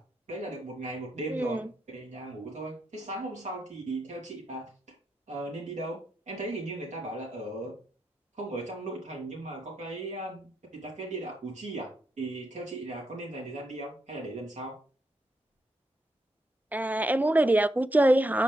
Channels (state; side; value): normal; both; correlation 0.81